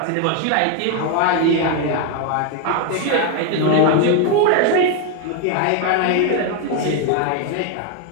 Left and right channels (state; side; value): different; both; correlation 0.01